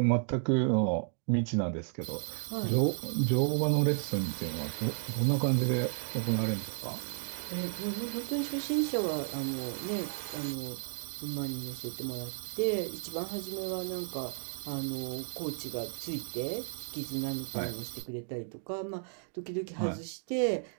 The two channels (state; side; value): silent; left; 56 dB below the other